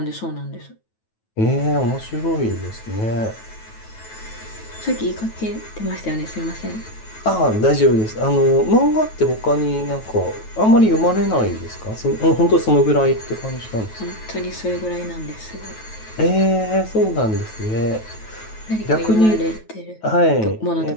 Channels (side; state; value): right; late; 9.2 ms